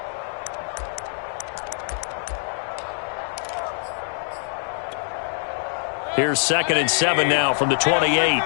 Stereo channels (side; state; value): right; silent; digital silence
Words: Here's 2nd and 7 now from the 28.